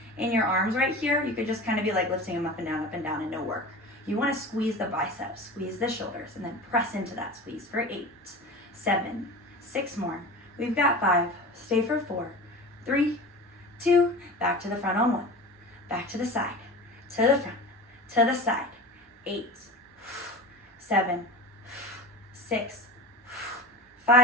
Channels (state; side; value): normal; both; correlation 0.33